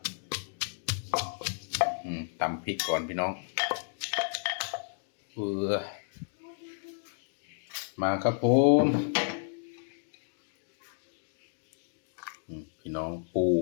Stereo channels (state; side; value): silent; right; digital silence